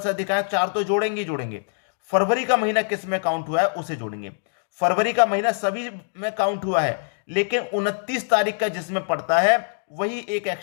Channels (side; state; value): right; silent; digital silence